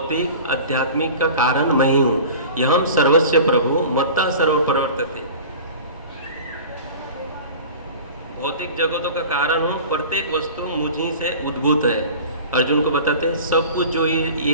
आध्यात्मिक का कारण मैं ही हूँ। यहम सर्वस्य प्रभु मत्ता सर्व प्रवर्तते, भौतिक जगतों का कारण हूँ, प्रत्येक वस्तु मुझी से उद्भूत है। अर्जुन को बताते हैं सब कुछ जो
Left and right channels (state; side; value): inverted; both; correlation -0.39